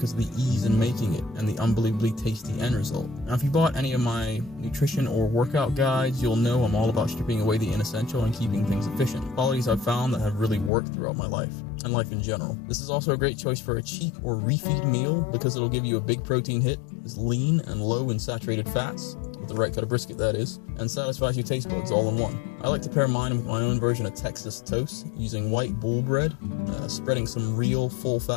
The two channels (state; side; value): drops out; right; at 10.7 s